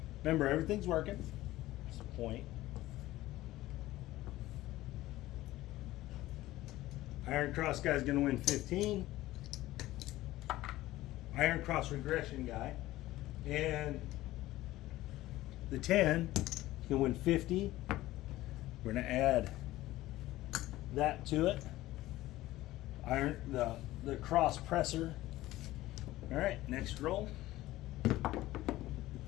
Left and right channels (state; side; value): quieter; right; 16.5 dB